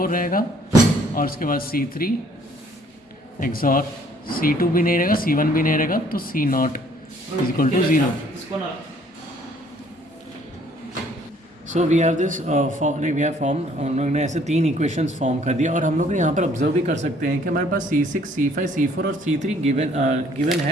रहेगा, और उसके बाद C3 XOR C2 भी नहीं रहेगा, C1 भी नहीं रहेगा, तो C0 is equal to 0। So we have this we have form, हम लोग ने ऐसे 3 इक्वेशंस फॉर्म कर दिया। और हम लोग यहाँ पर ऑब्जर्व भी कर सकते हैं कि हमारे पास C6, C5, C4 और C3 गिवन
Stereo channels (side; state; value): both; normal; correlation 0.61